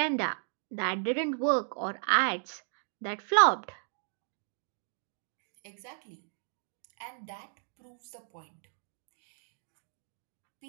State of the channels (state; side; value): silent; left; digital silence